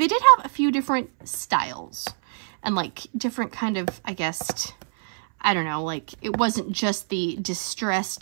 did have a few different styles and like different kind of, I guess, I don't know, like it wasn't just the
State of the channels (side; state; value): left; silent; 62 dB below the other